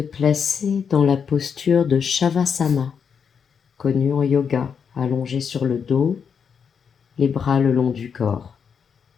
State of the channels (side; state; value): right; quieter; 6.8 dB